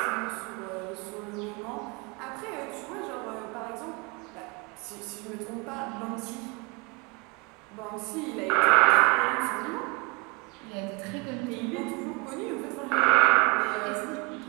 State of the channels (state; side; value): quieter; left; 27.5 dB